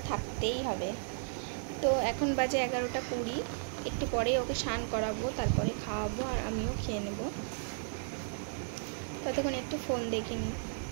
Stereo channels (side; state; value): left; silent; digital silence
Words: থাকতেই হবে। তো এখন বাজে 11:20, একটু পরে ওকে স্নান করাবো, তারপরে খাওয়াবো আর আমিও খেয়ে নেব। ততক্ষণ একটু ফোন দেখিনি।